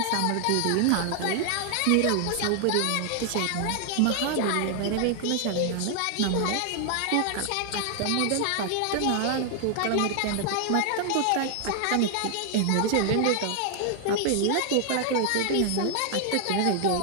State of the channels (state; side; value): different; both; correlation 0.00